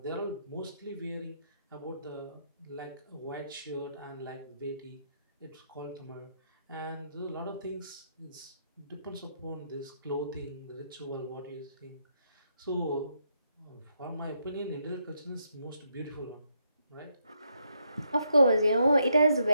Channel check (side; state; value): both; inverted; correlation -0.77